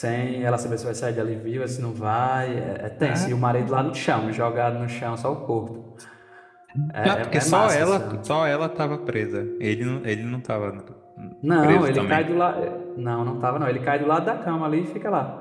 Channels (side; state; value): both; identical; correlation 1.00